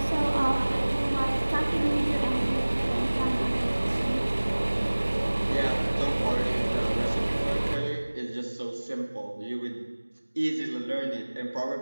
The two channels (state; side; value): inverted; both; correlation -1.00